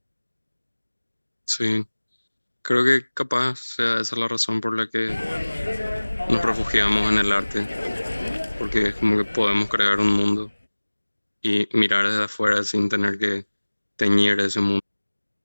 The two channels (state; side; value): inverted; both; correlation -1.00